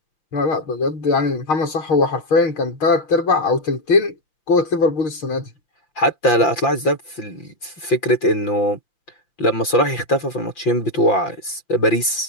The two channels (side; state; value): right; late; 5.8 ms